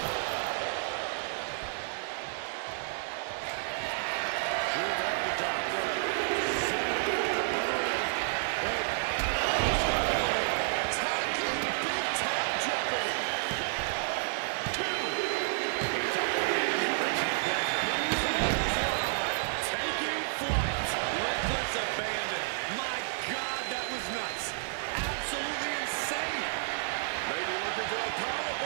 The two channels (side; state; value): left; silent; digital silence